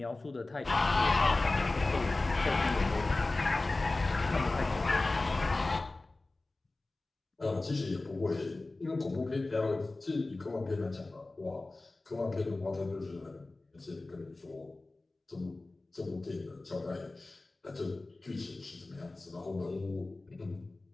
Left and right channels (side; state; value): right; quieter; 3.1 dB